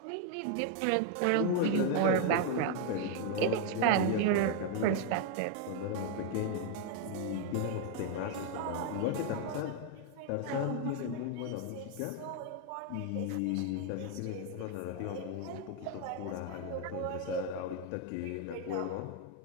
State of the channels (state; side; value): different; both; correlation 0.00